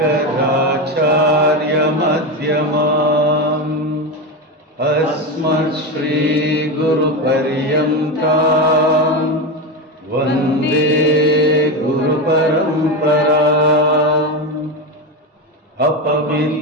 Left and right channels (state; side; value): normal; both; correlation 0.16